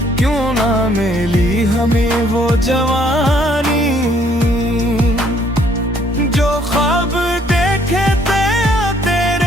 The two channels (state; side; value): normal; both; correlation 0.64